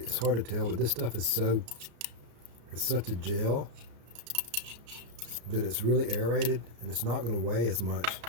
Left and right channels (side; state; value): left; late; 34 ms